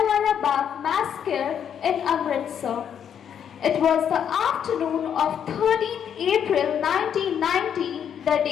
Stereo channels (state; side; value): quieter; right; 8.5 dB